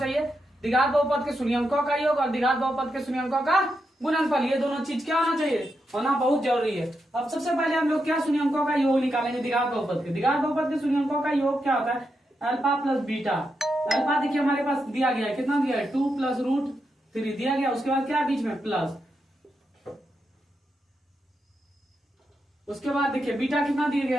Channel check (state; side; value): normal; both; correlation 0.85